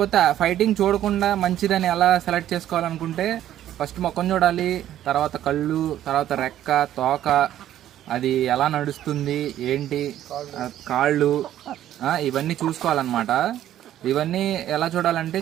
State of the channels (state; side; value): quieter; left; 12.0 dB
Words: ఫైటింగ్ చూడకుండా మంచిదని ఎలా సెలెక్ట్ చేసుకోవాలనుకుంటే, ఫస్ట్ ముఖం చూడాలి, తర్వాత కళ్ళు, తర్వాత రెక్క, తోక, అది ఎలా నడుస్తుంది ఏంటి, కాళ్ళు, ఇవన్నీ చూసుకోవాలన్నమాట. ఇవన్నీ ఎలా చూడాలంటే